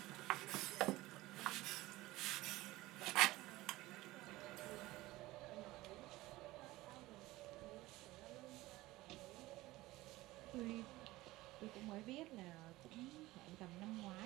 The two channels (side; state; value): left; quieter; 18.6 dB